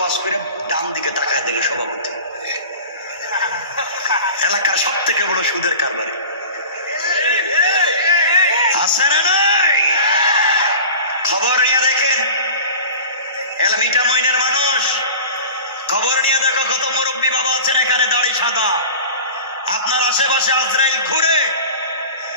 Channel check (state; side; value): inverted; both; correlation -0.38